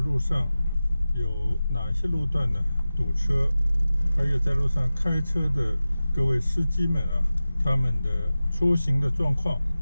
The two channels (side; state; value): both; inverted; correlation -0.95